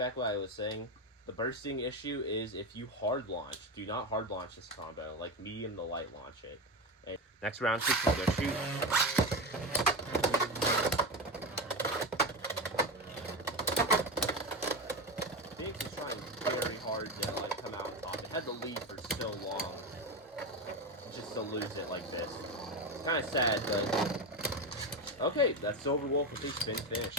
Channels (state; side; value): normal; both; correlation 0.19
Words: what I was saying. The bursting issue is if you hard launch. Do not hard launch this combo. Like medium to light launch it. And next round, 6 will go shoot. Phoenix is trying very hard to like come out on top. It had the lead for so long. Just to lose it like this. It's kind of sad, but okay, that's Silver Wolf with a spin finish.